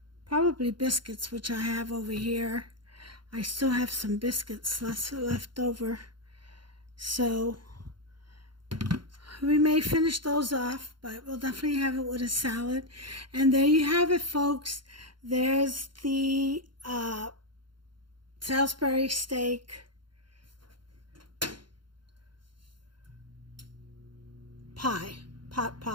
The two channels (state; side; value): late; left; 0.72 ms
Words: probably biscuits, which I have over here. I still have some biscuits left over, so we may finish those off, but we'll definitely have it with a salad. And there you have it, folks. There's the Salisbury steak pie, pot